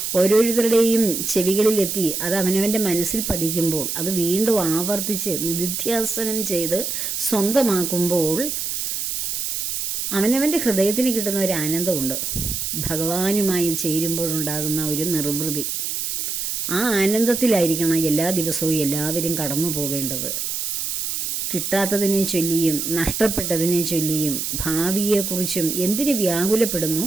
ഓരോരുത്തരുടെയും ചെവികളിലെത്തി അത് അവനവൻ്റെ മനസ്സിൽ പതിക്കുമ്പോൾ അത് വീണ്ടും ആവർത്തിച്ച് നിധിധ്യാസനം ചെയ്ത് സ്വന്തമാക്കുമ്പോൾ അവനവൻ്റെ ഹൃദയത്തിന് കിട്ടുന്ന ഒരു ആനന്ദമുണ്ട്. ഭഗവാനുമായി ചേരുമ്പോഴുണ്ടാകുന്ന ഒരു നിർവൃതി, ആ ആനന്ദത്തിലായിരിക്കണം എല്ലാ ദിവസവും എല്ലാവരും കടന്നു പോകേണ്ടത്. കിട്ടാത്തതിനെ ചൊല്ലിയും നഷ്ടപ്പെട്ടതിനെ ചൊല്ലിയും ഭാവിയെക്കുറിച്ചും എന്തിന് വ്യാകുലപ്പെടുന്നു?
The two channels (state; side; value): noise; right; hiss, 2 dB below the sound